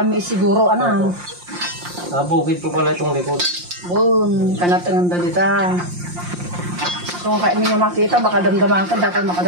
may siguro, ano. Bukid po pala itong likod. Boom, kanat ang dalita. Kung kaya niyo makita, baka damdaman ka, dapat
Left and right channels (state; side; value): late; left; 5.7 ms